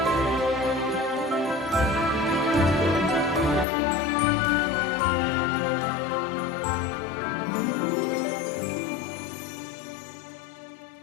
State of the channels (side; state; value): right; drops out; at 3.7 s